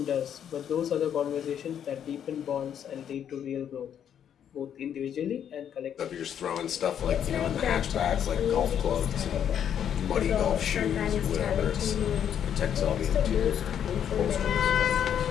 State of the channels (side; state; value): right; quieter; 9.1 dB